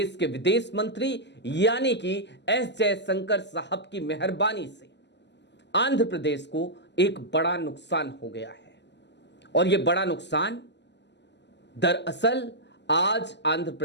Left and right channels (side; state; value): right; late; 0.51 ms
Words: के विदेश मंत्री यानी कि एस जयशंकर साहब की मेहरबानी से आंध्र प्रदेश को एक बड़ा नुकसान हो गया है। और यह बड़ा नुकसान दरअसल आज आंध्र